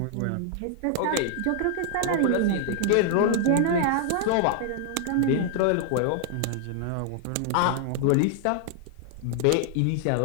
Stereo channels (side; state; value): both; different; correlation 0.00